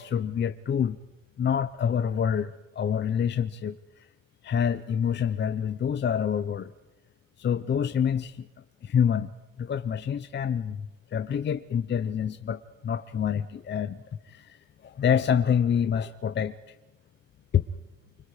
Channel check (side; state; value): right; quieter; 7.8 dB